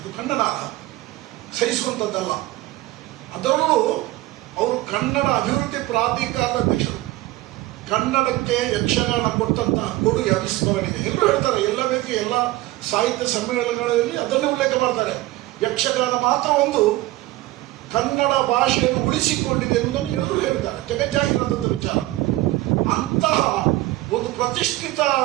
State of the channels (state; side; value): quieter; left; 17.8 dB